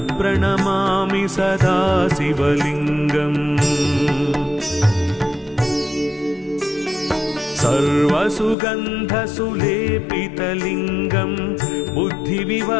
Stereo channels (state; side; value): drops out; right; at 8.6 s